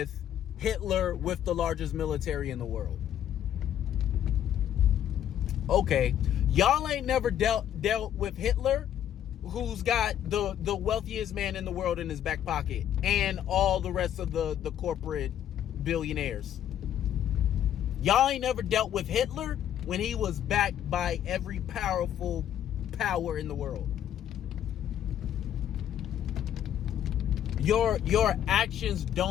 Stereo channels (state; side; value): quieter; right; 10.5 dB